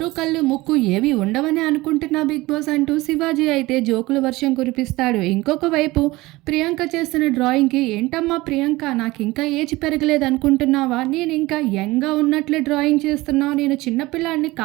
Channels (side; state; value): left; quieter; 20.1 dB